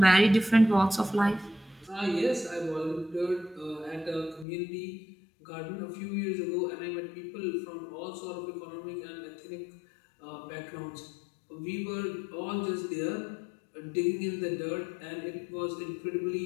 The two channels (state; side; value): drops out; right; at 4.5 s